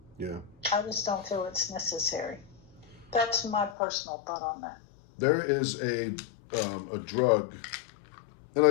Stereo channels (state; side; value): drops out; right; at 3.8 s